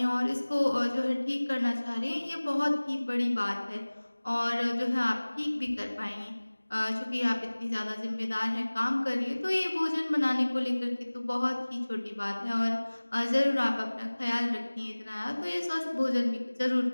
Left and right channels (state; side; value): inverted; both; correlation -1.00